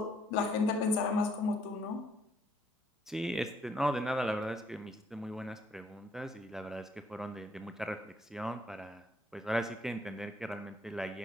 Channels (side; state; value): both; normal; correlation 0.68